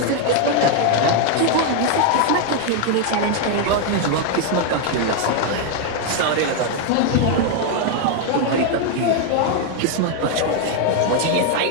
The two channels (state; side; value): different; both; correlation 0.01